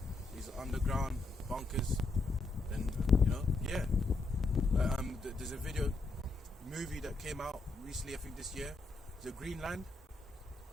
These underground bunkers. And, you know, yeah. There's a movie that came out recently, I think this year, the Greenland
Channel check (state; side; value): quieter; right; 3.5 dB